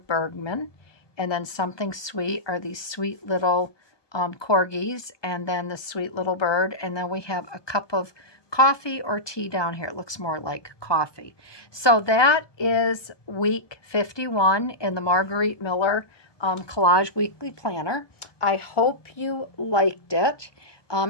Bergman, and then something sweet are these sweet little corgis, and then the sweet little bird, and then we have a cup of coffee or tea down here. It looks more like coffee. So that is week 51 in the Margarete Miller Collage Weekly Planner. I hope you liked it.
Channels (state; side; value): late; right; 1.2 ms